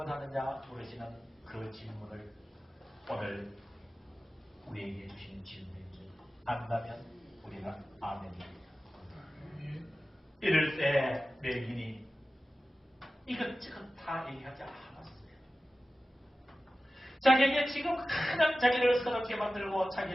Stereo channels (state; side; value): normal; both; correlation 0.95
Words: 물으시는 그 질문을 오늘 우리에게 주신 질문인지 안다면 우리는 아멘입니다. 이럴 때 맹인이 이것저것 다 얘기하지 않았어요. 자기에게 지금 가장 자기를 서럽게 만들고